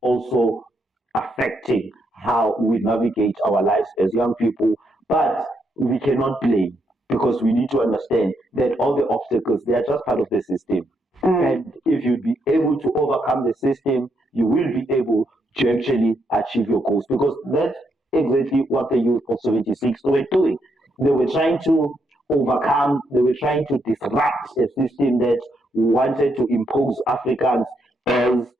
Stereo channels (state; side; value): normal; both; correlation 0.78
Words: affecting how we navigate our lives as young people, but we cannot blame, because we need to understand that all the obstacles, they are just part of the system. And if you'd be able to overcome the system, you will be able to actually achieve your goals, because that's exactly what the youth of 76 were doing. They were trying to overcome, they were trying to disrupt a system that wanted to impose Africans as,